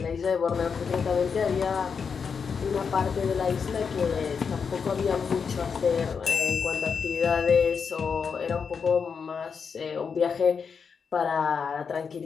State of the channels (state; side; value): quieter; right; 6.0 dB